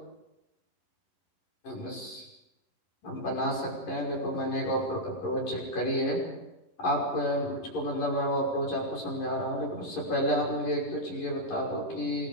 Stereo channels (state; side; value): late; right; 11 ms